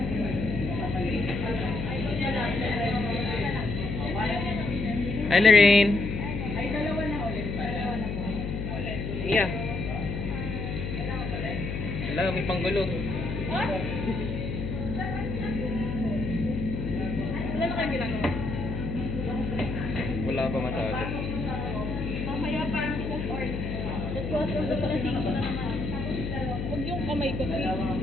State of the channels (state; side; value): noise; left; hum, 3 dB below the sound